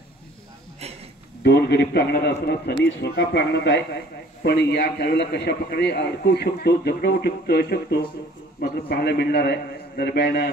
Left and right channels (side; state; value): both; normal; correlation 0.53